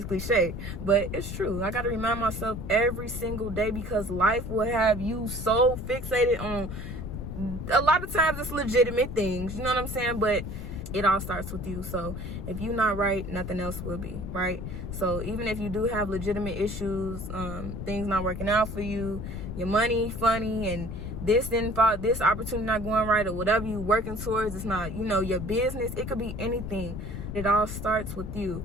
cliche, but it's true. I got to remind myself every single day, because life will have you so fixated on, a lot of times it's legitimate things, you know what I'm saying? But it all starts with you. So if you're not right, nothing else will be, right? So even if you do have legitimate issues, things not working out for you, your money funny, and this didn't fall, this opportunity not going right, or whatever you working towards, it's not, your business, it could be anything. It all starts with you.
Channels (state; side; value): noise; left; rumble, 7 dB below the sound